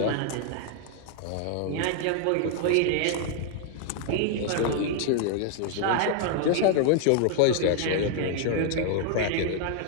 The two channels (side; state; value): both; different; correlation 0.00